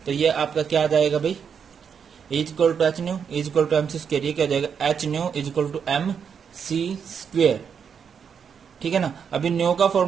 तो ये आपका क्या आ जाएगा भाई? E is equal to H nu is equal to mc square. ये क्या हो जाएगा? H nu is equal to mc square. ठीक है ना? अभी न्यू का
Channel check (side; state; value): left; quieter; 7.0 dB